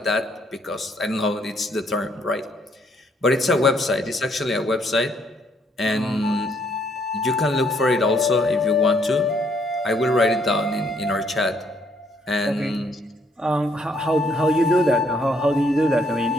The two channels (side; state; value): both; normal; correlation 0.69